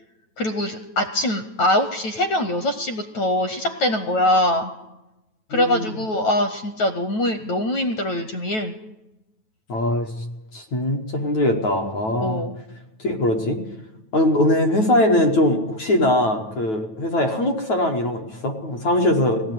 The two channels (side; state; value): right; late; 9.2 ms